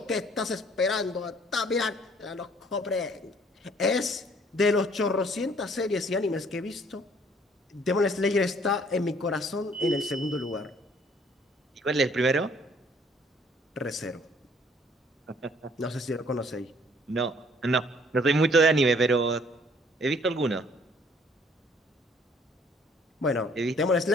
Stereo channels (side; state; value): both; normal; correlation 0.60